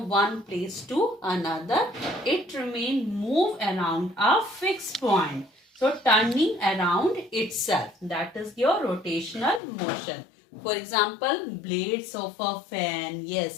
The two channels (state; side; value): drops out; right; at 9.6 s